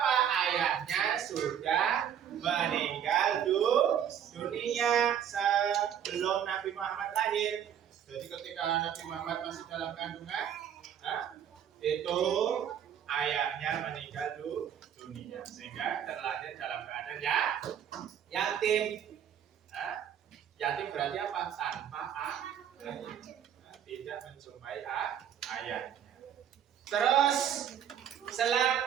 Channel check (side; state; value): left; quieter; 9.2 dB